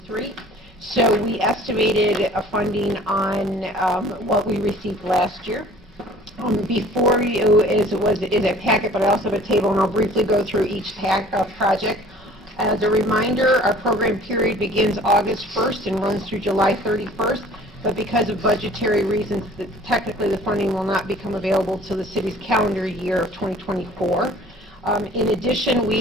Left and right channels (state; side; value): normal; both; correlation 0.50